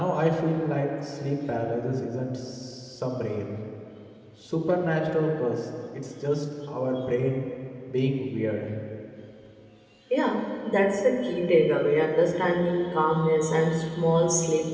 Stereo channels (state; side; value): identical; both; correlation 1.00